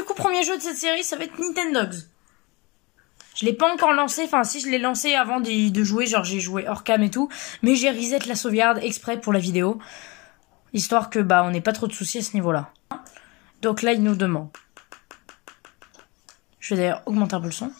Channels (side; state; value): right; quieter; 26.1 dB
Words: coup premier jeu de cette série ça va être Nintendogs. Je l'ai pas encore lancé, enfin si je l'ai lancé avant de jouer, genre j'ai joué hors cam et tout, mais j'ai reset la sauvegarde exprès pour la vidéo, histoire que on n'ait pas trop de soucis à ce niveau-là. Donc là il nous demande. Je vais d'ailleurs augmenter un peu le son.